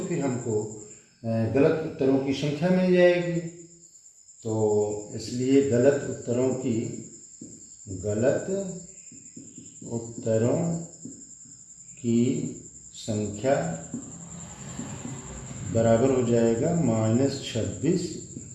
फिर हमको गलत उत्तरों की संख्या मिल जाएगी। तो इसलिए गलत उत्तरों की संख्या बराबर हो जाएगा -26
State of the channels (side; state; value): both; identical; correlation 1.00